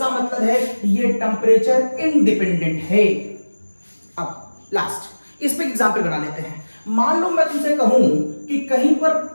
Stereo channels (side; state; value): both; inverted; correlation -1.00